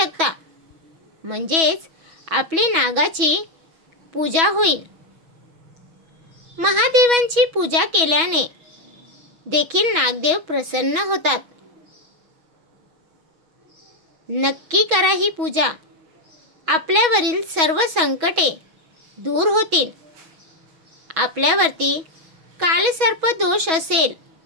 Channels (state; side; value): late; left; 6.2 ms